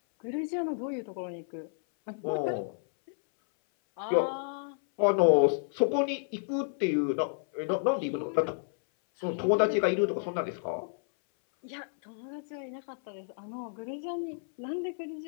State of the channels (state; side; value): silent; right; 57 dB below the other